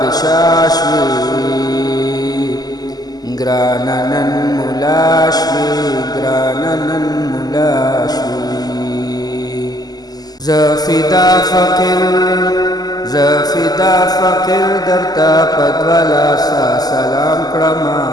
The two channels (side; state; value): right; late; 0.19 ms